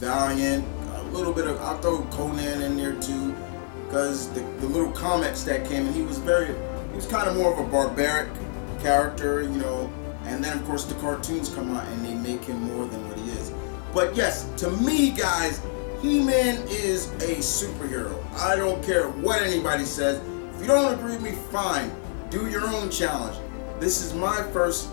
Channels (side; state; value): right; silent; 60 dB below the other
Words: a little bit of, I'll throw Conan in there too, because the little comics that came in, he was kind of more of a barbaric character, you know, and then of course the cartoons come out and they make him more than what he is. But yes, to me, guys, He-Man is a superhero. I don't care what anybody says. If you don't agree with me, fine. Do your own challenge. This is my first